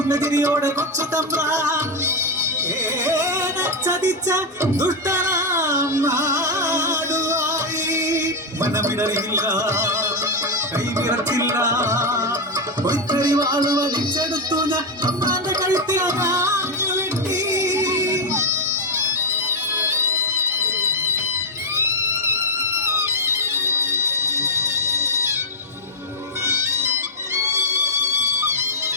തിരിയോടെ കൊച്ചു തമ്പ്രാൻ ചതിച്ച ദുഷ്ടനാം നാടുവായി മനമിടറിയില്ല കൈവിറച്ചില്ല പൊയ്ക്കറി വാള് വലിച്ചെടുത്തു ഞാൻ തമ്പ്രാന്റെ കഴുത്തിൽ അതാഞ്ഞു വെട്ടി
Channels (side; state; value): both; normal; correlation 0.03